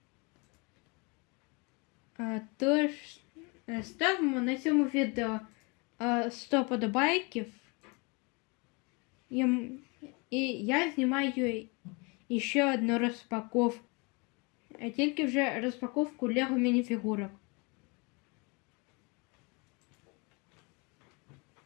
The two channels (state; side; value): quieter; right; 29.9 dB